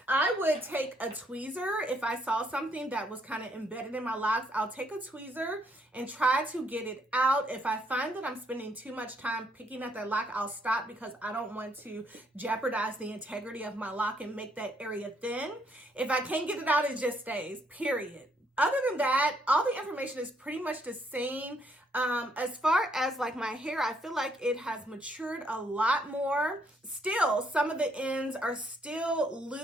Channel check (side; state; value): both; normal; correlation 0.71